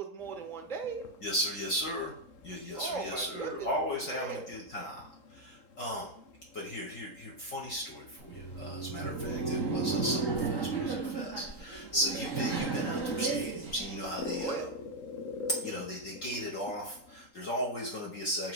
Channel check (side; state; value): right; late; 3.8 ms